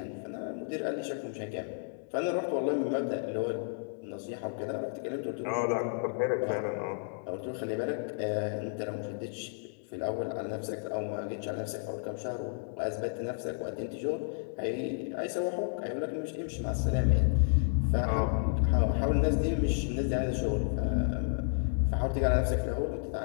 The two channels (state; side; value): silent; right; digital silence